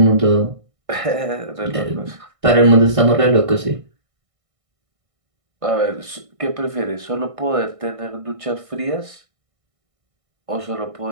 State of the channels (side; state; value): left; late; 1.6 ms